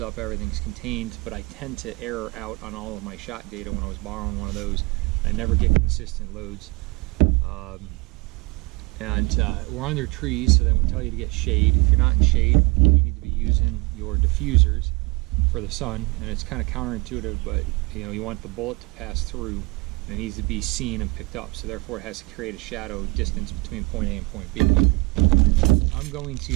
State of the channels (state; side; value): quieter; left; 24.7 dB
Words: up, everything's contained, but I tend to error out on all of my shot data when I was borrowing one of those. I never get consistent loads. We're under trees, so they would tell you to get shade. If you're not in shade, you need to be using your diffusers for the sun, and it's kind of counterintuitive, but you want the bullet to pass through, and it needs to be seen and picked up, so therefore it has to create a shadow distance between point A and point B. I'm going